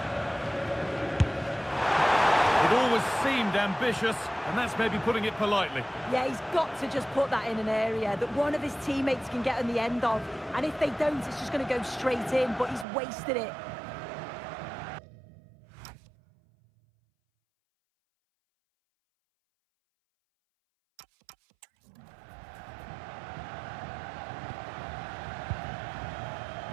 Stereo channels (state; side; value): drops out; left; at 12.9 s